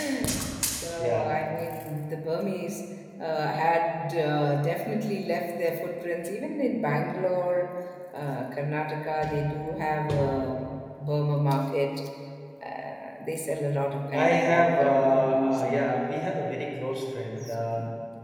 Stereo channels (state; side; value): identical; both; correlation 1.00